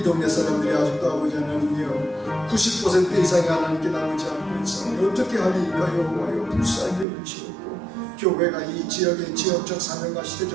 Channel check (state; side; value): drops out; left; at 7.1 s